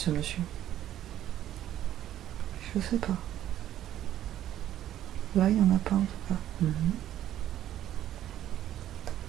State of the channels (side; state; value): left; quieter; 12.0 dB